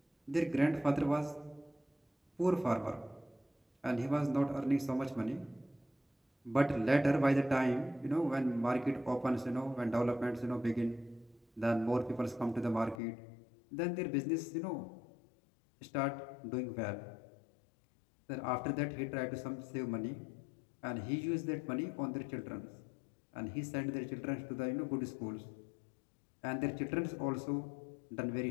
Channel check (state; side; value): drops out; right; at 13.0 s